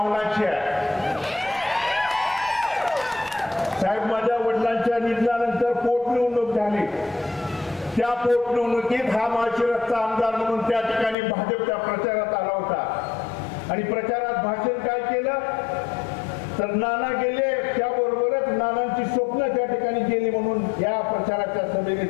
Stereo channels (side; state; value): right; drops out; at 11.2 s